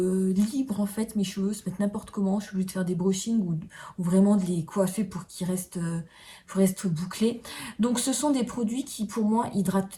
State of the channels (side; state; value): both; identical; correlation 1.00